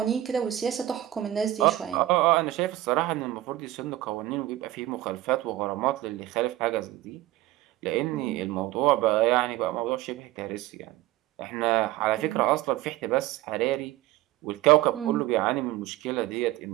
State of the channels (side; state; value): left; quieter; 15.2 dB